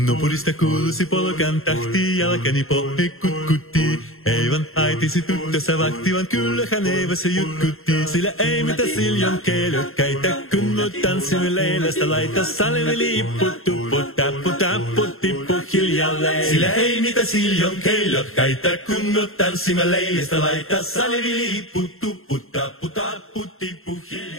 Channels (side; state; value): right; late; 0.61 ms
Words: No purista kuulusi polkan tahti, jalkani pohje kutkutti. Eivan haitisi tyttössä vahti, vaan kyllähän Eevässä jutkutti. Sillä ei mitä siljon keilökkäitä, kun me tanssimme leilästä. Laita salve lippu, tuppu, tappu, tappu, tippu hiljalleen. Sillä ei mitä siljon keilökkäitä, kun me tanssimme leilästä. Laita salvi lippu, tuppu, tappu, tappu, tippu